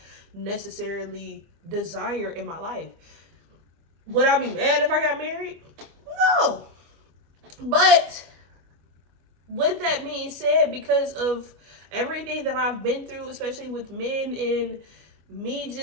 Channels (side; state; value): left; late; 25 ms